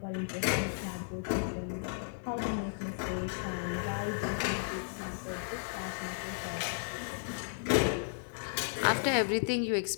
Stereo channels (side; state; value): right; silent; 55 dB below the other